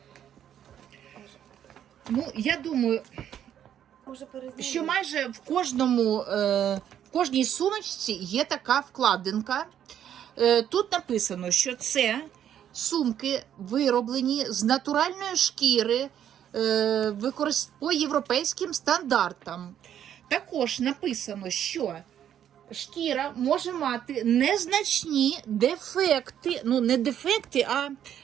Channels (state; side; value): quieter; left; 10.0 dB